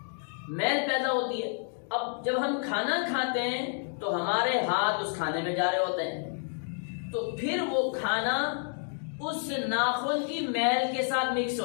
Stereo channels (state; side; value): silent; right; 58 dB below the other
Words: میل پیدا ہوتی ہے۔ اب جب ہم کھانا کھاتے ہیں تو ہمارے ہاتھ اس کھانے میں جا رہے ہوتے ہیں، تو پھر وہ کھانا اس ناخن کی میل کے ساتھ مکس